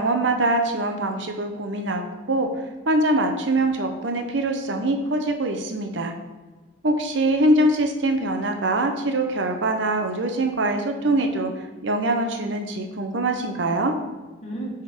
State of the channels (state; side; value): normal; both; correlation 0.20